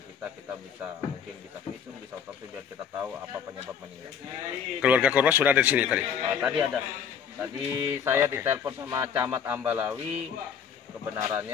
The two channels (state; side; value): quieter; right; 7.5 dB